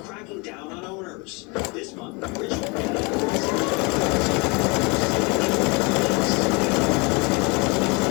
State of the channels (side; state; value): right; quieter; 29.3 dB